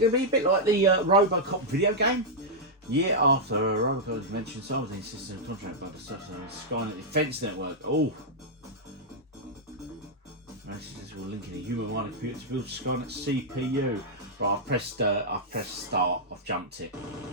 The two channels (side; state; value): both; normal; correlation -0.07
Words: to be a bit like the RoboCop video game? Year after RoboCop was mentioned, so was insisted on contract about the Skynet Defense Network. Oh. Messages will link in a human-minded computer to build Skynet CPU. Right, I've pressed start. I've jumped it.